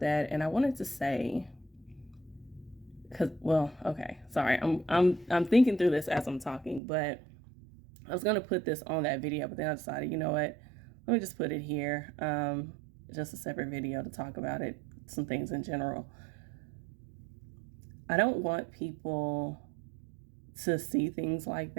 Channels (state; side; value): drops out; left; at 6.8 s